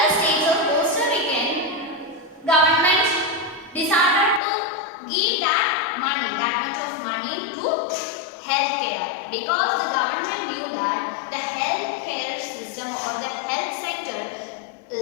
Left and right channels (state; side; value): drops out; right; at 4.4 s